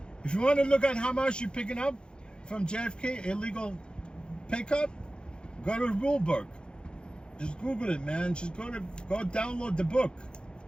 If you want to look at how much you're picking up from JFK, illegal pickup, go to the rule book. Just Google it, man. Just go download the book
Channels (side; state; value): right; late; 0.050 ms